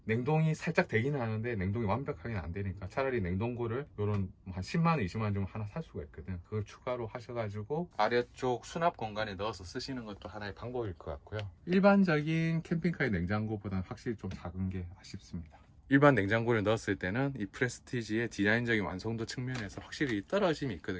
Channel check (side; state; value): both; identical; correlation 1.00